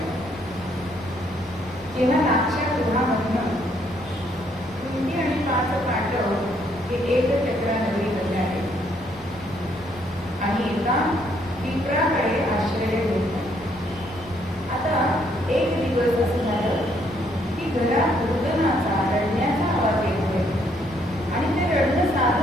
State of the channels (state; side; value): normal; both; correlation 0.69